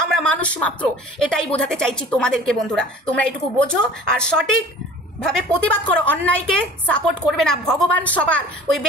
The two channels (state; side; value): normal; both; correlation 0.44